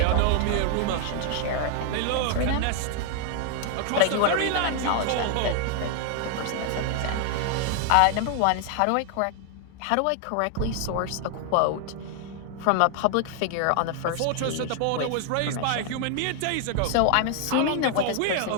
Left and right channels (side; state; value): both; different; correlation 0.00